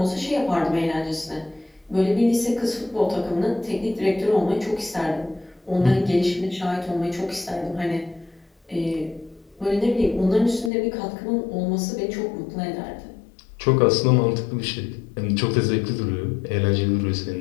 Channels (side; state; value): right; drops out; at 10.7 s